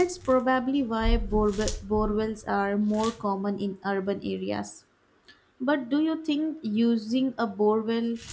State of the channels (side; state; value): both; identical; correlation 1.00